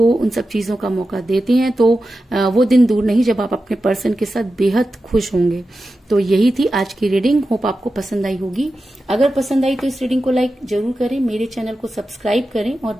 उन सब चीजों का मौका देते हैं तो वो दिन दूर नहीं जब आप अपने पर्सन के साथ बेहद खुश होंगे। तो यही थी आज की रीडिंग। होप आपको पसंद आई होगी। अगर पसंद आई तो इस रीडिंग को लाइक जरूर करें, मेरे चैनल को सब्सक्राइब करें और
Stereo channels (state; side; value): normal; both; correlation 0.92